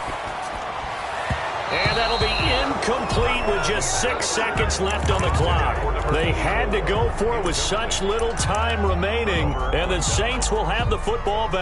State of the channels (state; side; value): identical; both; correlation 1.00